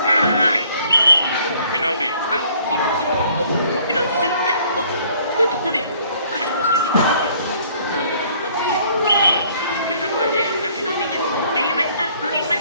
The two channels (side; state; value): both; inverted; correlation -0.60